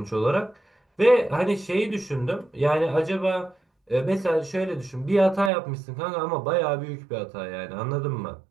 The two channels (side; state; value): left; drops out; at 5.5 s